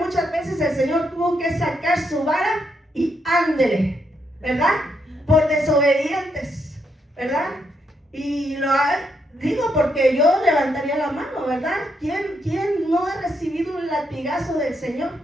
veces el Señor tuvo que sacar su vara y ándele, ¿verdad? Por desobedientes, ¿verdad? Y digo porque yo levantaría la mano, ¿verdad? ¿Quién no ha recibido un latigazo del Señor?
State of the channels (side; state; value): both; normal; correlation 0.78